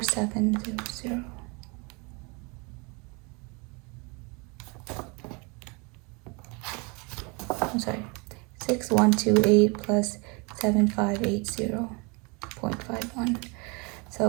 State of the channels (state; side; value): quieter; left; 30.0 dB